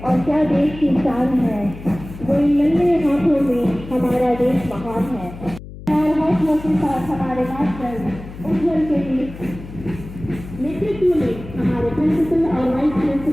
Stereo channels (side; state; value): left; noise; hum, 14 dB below the sound